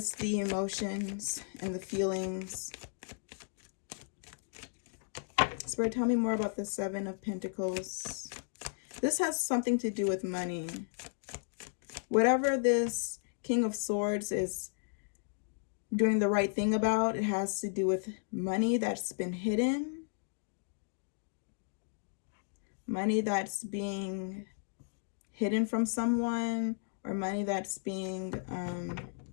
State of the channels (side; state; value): right; silent; digital silence